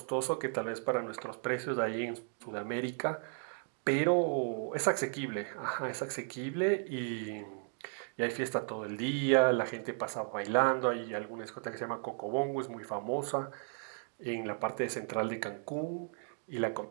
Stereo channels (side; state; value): left; silent; 54 dB below the other